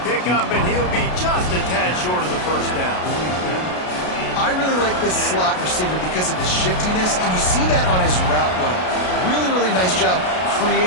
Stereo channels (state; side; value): late; right; 33 ms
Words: pickup, and he'll be just a tad short of the first down. I really like this slot receiver because of his shiftiness, and you see that on his route run. Really, really nice job